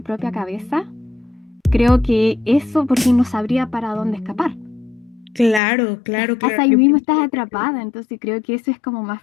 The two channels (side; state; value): right; drops out; at 5.6 s